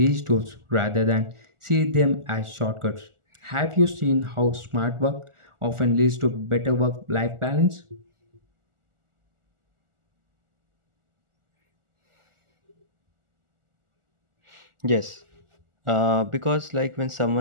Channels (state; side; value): late; left; 1.4 ms